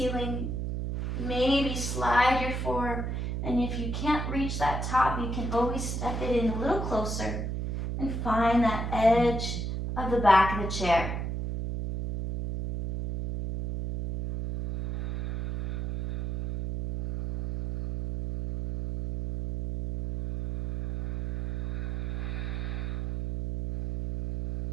Maybe slide your forearm. And if you can't reach that top, you can always step it in a little closer and find that edge of the back of the chair.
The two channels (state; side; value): noise; right; hum, 3 dB below the sound